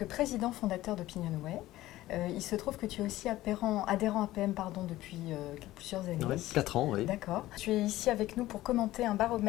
président fondateur d'Opinionway. Il se trouve que tu es aussi adhérent à PM depuis plusieurs années. Ouais, 4 ans, oui. D'accord. Tu es ici avec nous pour commenter un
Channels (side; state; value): right; quieter; 16.1 dB